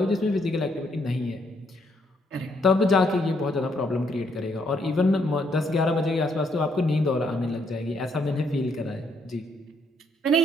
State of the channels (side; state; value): both; normal; correlation 0.72